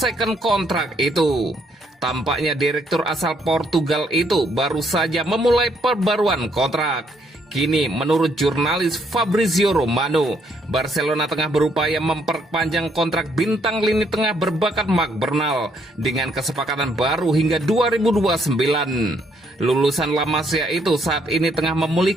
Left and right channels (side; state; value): both; normal; correlation 0.71